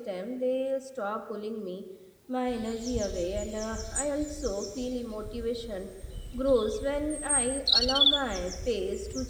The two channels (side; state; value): both; identical; correlation 1.00